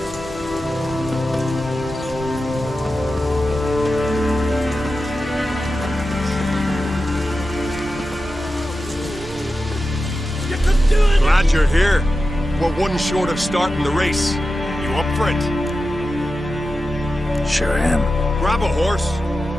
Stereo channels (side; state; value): both; normal; correlation 0.92